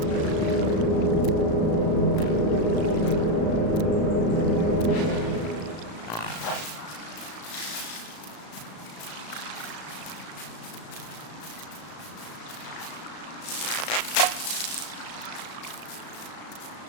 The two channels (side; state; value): right; late; 35 ms